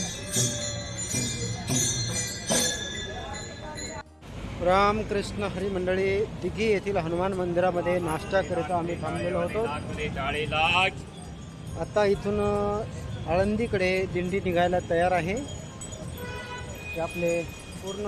रामकृष्ण हरी मंडळी, दिघी येथील हनुमान मंदिरामध्ये नाश्ता करिता आम्ही थांबलेलो होतो. आता इथून आळंदीकडे दिंडी निघायला तयार आहे. ते आपले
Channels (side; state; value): both; identical; correlation 1.00